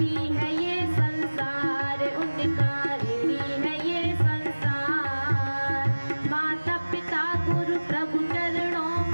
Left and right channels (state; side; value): inverted; both; correlation -1.00